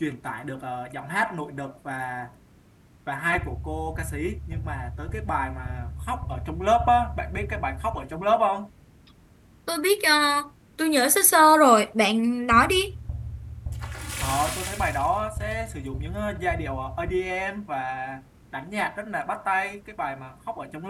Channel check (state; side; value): identical; both; correlation 1.00